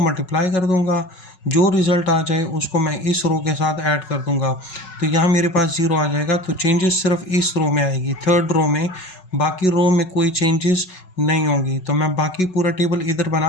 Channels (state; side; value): late; right; 5.4 ms